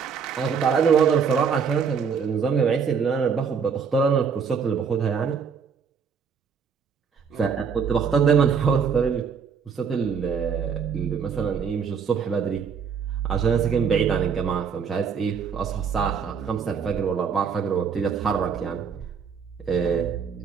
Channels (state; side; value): quieter; left; 6.4 dB